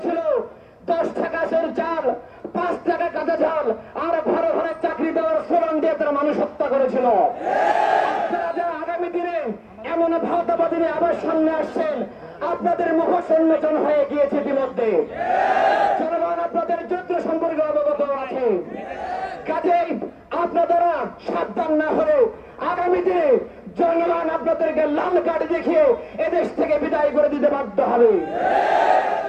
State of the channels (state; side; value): identical; both; correlation 1.00